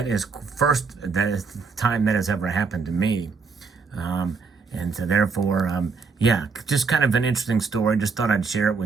is the time that has ever happened to me. And so therefore, just kind of an interesting story. Just thought I'd share it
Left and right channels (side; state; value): left; quieter; 4.9 dB